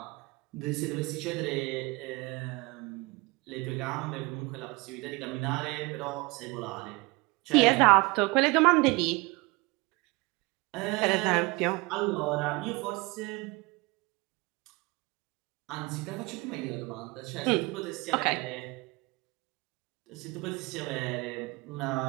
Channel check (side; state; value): left; quieter; 25.1 dB